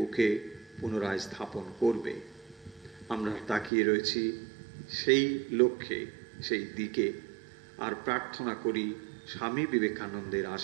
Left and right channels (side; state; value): left; drops out; at 3.7 s